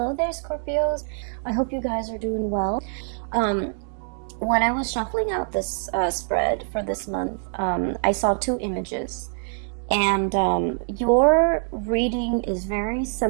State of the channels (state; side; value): silent; left; digital silence